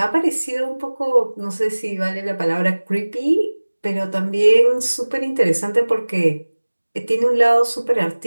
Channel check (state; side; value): inverted; both; correlation -1.00